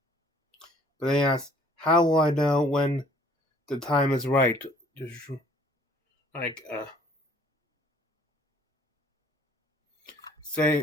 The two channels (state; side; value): normal; both; correlation 0.57